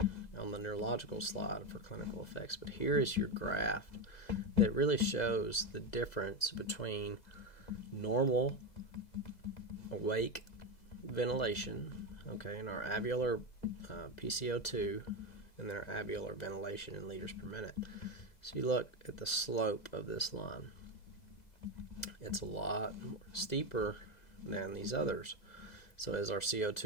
on the neurological slide for clinical effects, but here is your graph that really shows the difference between normal awake ventilation, in our alveolar PCO2 and their alveolar ventilation in liters per minute. So you look at the slope of this line. It's a lot steeper than these others. So as our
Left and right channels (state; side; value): late; right; 2.0 ms